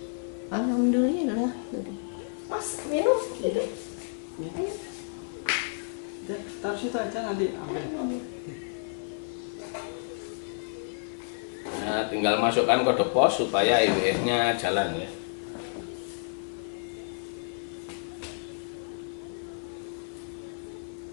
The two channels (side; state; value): right; silent; 58 dB below the other